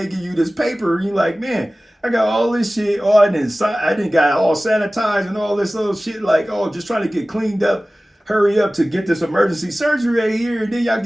give you this paper, and you like, man, I got all this shit. Oh, I didn't got all sanitized and all this little shit. Like, oh, just trying to get cleaned up. Hurry up to get this emergency surgery right here. And then y'all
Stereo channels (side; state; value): both; normal; correlation 0.97